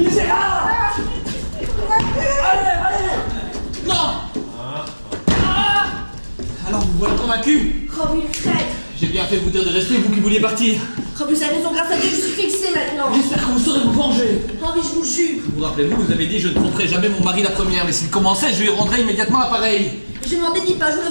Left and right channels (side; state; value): both; inverted; correlation -1.00